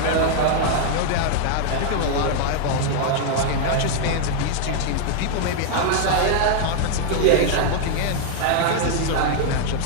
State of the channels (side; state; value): both; different; correlation 0.00